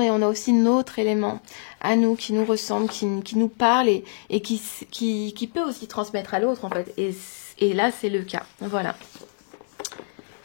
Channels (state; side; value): silent; right; 58 dB below the other